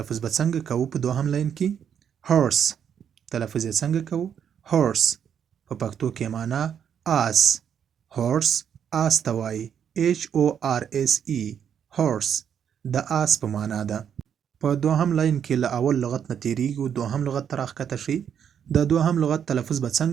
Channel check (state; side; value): quieter; left; 8.4 dB